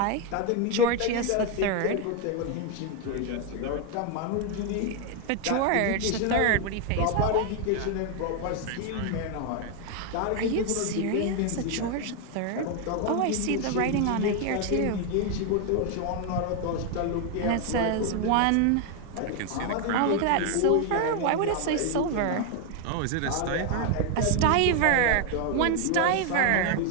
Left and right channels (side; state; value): both; different; correlation 0.01